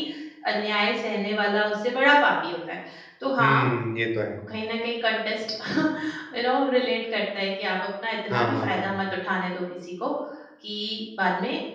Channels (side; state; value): both; identical; correlation 1.00